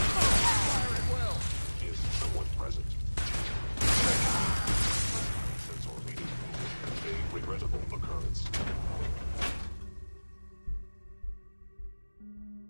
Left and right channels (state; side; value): inverted; both; correlation -1.00